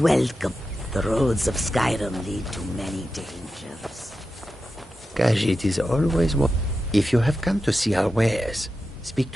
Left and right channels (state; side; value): normal; both; correlation 0.90